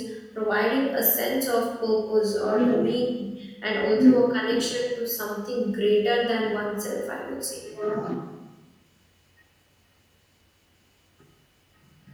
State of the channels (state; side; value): identical; both; correlation 1.00